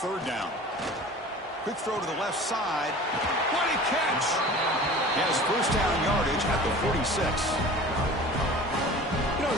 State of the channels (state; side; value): normal; both; correlation 0.41